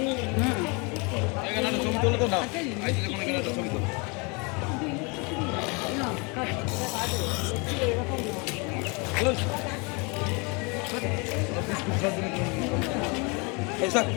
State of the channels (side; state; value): right; quieter; 30.5 dB